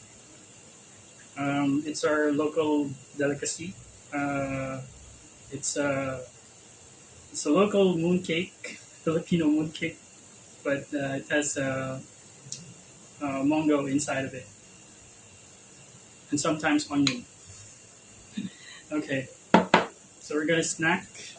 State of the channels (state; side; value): identical; both; correlation 1.00